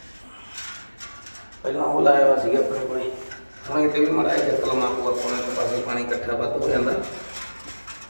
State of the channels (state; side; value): inverted; both; correlation -1.00